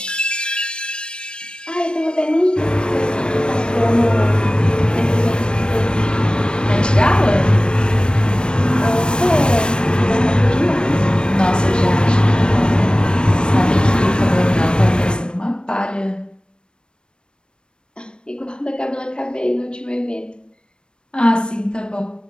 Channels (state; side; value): late; right; 0.053 ms